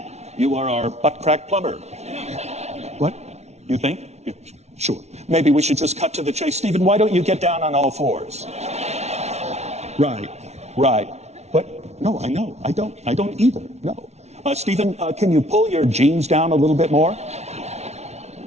You are our butt crack plumber." What? You think? Yeah, sure. Maybe we should just cut to the chase. Stephen, why don't you get down on all fours? Right. But no, I know. I don't either. No. Stephen, can you pull your jeans down a little bit more?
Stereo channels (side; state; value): left; late; 0.32 ms